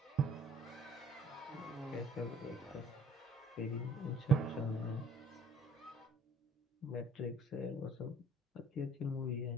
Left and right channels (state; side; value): normal; both; correlation 0.56